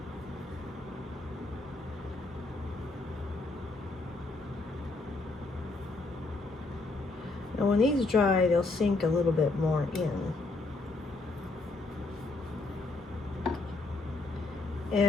now when these dry, they'll sink a little bit more in.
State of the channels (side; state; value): right; quieter; 3.3 dB